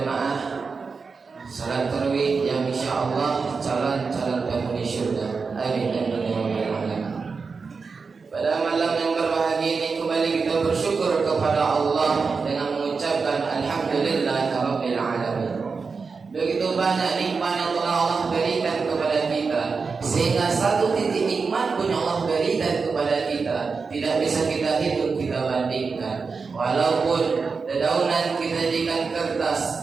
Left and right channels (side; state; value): left; quieter; 4.8 dB